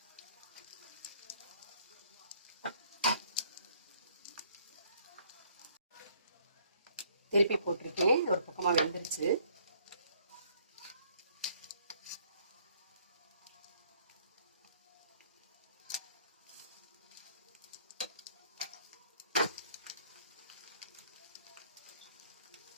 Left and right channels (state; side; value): inverted; both; correlation -0.63